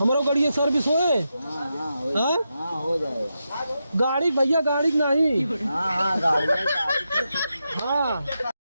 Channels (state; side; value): inverted; both; correlation -0.87